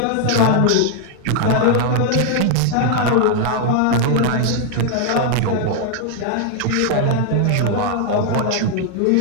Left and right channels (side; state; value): both; different; correlation 0.00